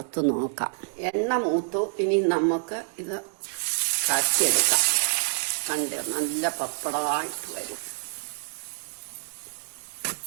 നോക്കാം. എണ്ണ മൂത്തു. ഇനി നമുക്ക് ഇത് കാച്ചിയെടുക്കാം. കണ്ട് നല്ല പപ്പടമായിട്ട് വരും.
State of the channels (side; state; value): left; silent; digital silence